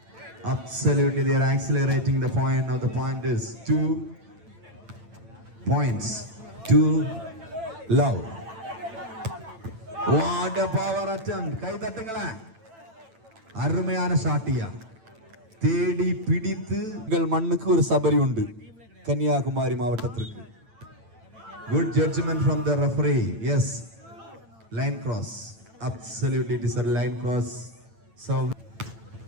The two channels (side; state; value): left; late; 9.0 ms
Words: Absolutely, they are accelerating the point. Now the point is 2 points. 2 love. What a power attempt. கை தட்டுங்களா. அருமையான ஷாட்டியா. தேடி பிடித்து உங்கள் மண்ணுக்கு ஒரு சபரி உண்டு. கன்னியாகுமரி மாவட்டத்திற்கு. Good judgment from the referee. Yes. Line cross. Absolutely, it is a line cross. So